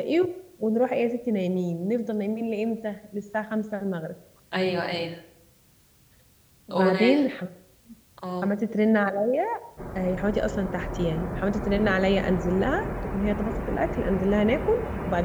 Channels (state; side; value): identical; both; correlation 1.00